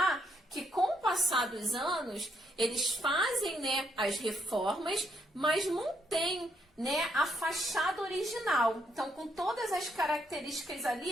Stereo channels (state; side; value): normal; both; correlation 0.74